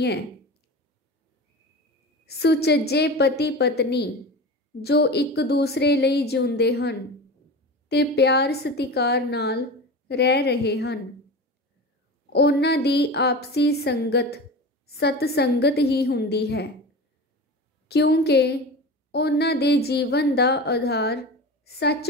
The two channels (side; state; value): both; normal; correlation 0.30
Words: सुचज्जे पति पत्नी जो एक दूसरे लई जिउंदे हन ते प्यार सतिकार नाल रह रहे हैं, उन्हां दी आपसी संगत सतसंगत ही हुंदी है, क्योंकि उन्हां दे जीवन दा आधार